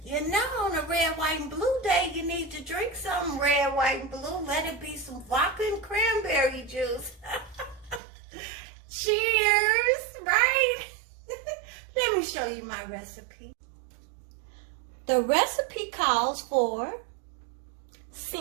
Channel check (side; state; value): left; drops out; at 8.0 s